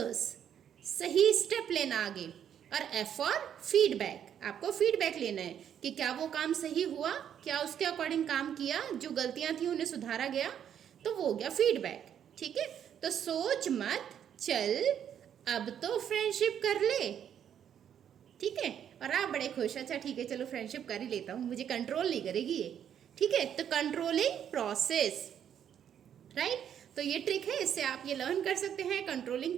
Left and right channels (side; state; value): left; quieter; 9.2 dB